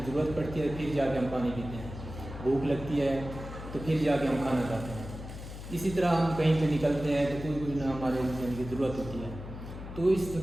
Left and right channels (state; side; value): noise; left; hum, 10 dB below the sound